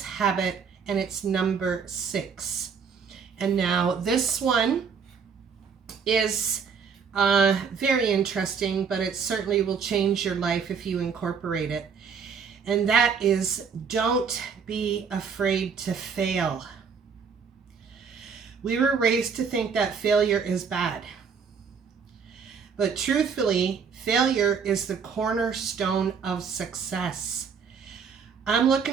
habit, and it's number 6. And now this one is very interesting, but it certainly will change your life if you incorporate it. And that is, don't be afraid to fail. We were raised to think that failure is bad. But truthfully, failure is the cornerstone of success. I'm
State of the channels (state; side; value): quieter; left; 6.2 dB